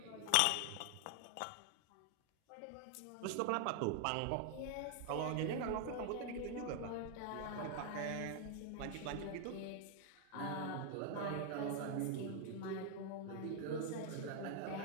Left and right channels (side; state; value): both; different; correlation 0.00